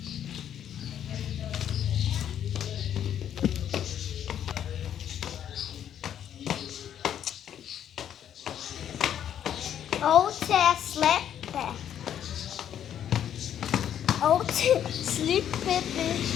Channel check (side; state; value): right; quieter; 9.9 dB